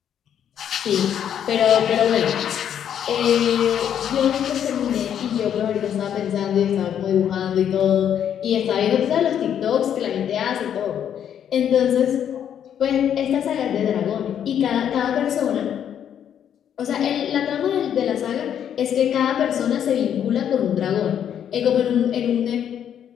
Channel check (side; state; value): right; quieter; 9.3 dB